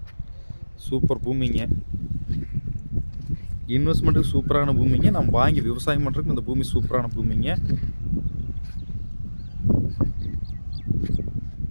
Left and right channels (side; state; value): both; inverted; correlation -1.00